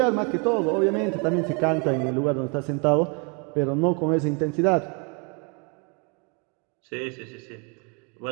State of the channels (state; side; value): quieter; left; 34.0 dB